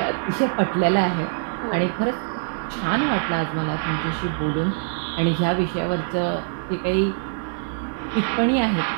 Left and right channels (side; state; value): left; silent; digital silence